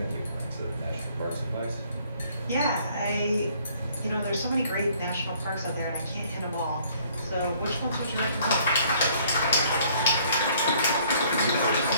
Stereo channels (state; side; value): inverted; both; correlation -0.61